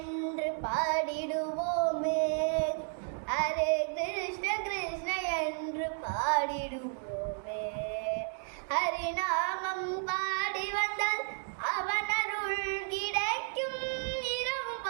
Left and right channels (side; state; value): left; silent; 56 dB below the other